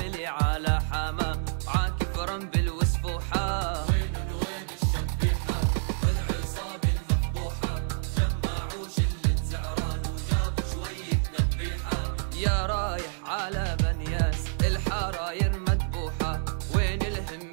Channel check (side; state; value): left; silent; 59 dB below the other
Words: على حما عاكف رنبل وسفوحة. وين الشبيحة والعصابة المفضوحة، جمعوا شلة زعران وجابوا شوية نبيحة. يا رايح على بنياس الحراير مذبوحة، وين